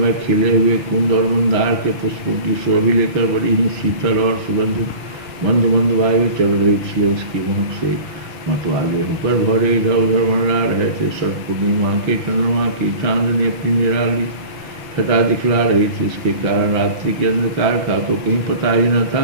खिले हुए कुंद और मंदार के पुष्पों की शोभी लेकर बड़ी ही शीतल और सुगंधित मंद मंद वायु चल रही थी। उसकी महक से मतवाले होकर भौरे इधर उधर मंडरा रहे थे। शरद पूर्णिमा के चंद्रमा की चांदनी अपनी निराली छटा दिखला रही थी। इसके कारण रात्रि के अंधकार का तो कहीं पता ही न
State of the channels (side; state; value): left; late; 5.9 ms